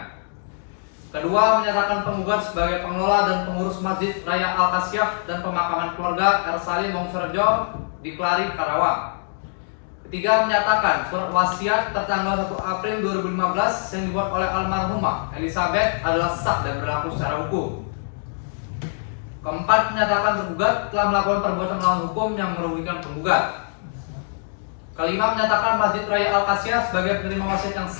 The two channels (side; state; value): right; silent; digital silence